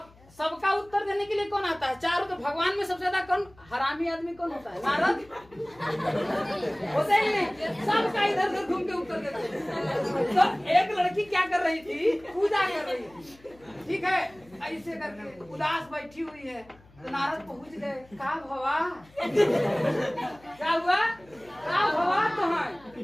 सबका उत्तर देने के लिए कौन आता है? चारों। तो भगवान में सबसे ज्यादा कौन हरामी आदमी कौन होता है? नारद होते ही नहीं। सबका इधर उधर घूम के उत्तर देते हैं। तो एक लड़की क्या कर रही थी? पूजा कर रही थी। ठीक है, ऐसे करके उदास बैठी हुई है। तो नारद पहुंच गए। का भवा? क्या हुआ? का भवा? तो है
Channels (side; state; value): left; noise; hum, 26 dB below the sound